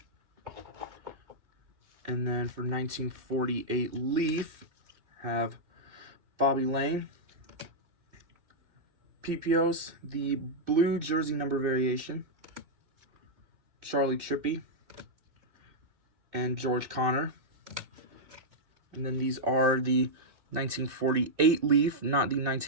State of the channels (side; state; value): left; late; 2.6 ms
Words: And then for 1948 Leaf, have Bobby Lane, PPOs, the blue jersey number variation, Charlie Trippy, and George Connor. And then these are the 1948 Leaf, not the